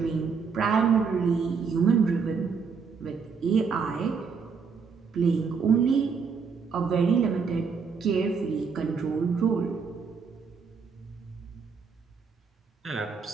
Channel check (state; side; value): quieter; left; 5.5 dB